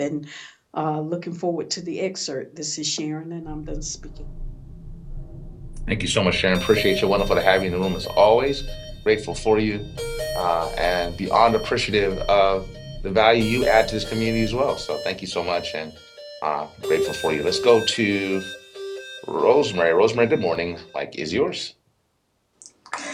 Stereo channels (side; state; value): both; identical; correlation 1.00